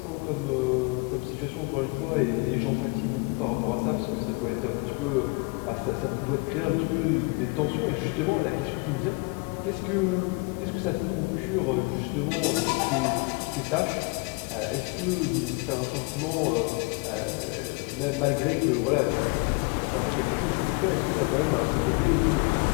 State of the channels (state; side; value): quieter; right; 29.7 dB